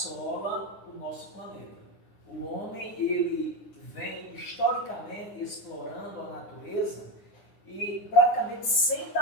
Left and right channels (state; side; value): late; right; 9.7 ms